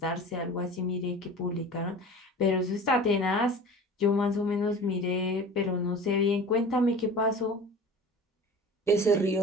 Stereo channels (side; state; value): both; normal; correlation 0.39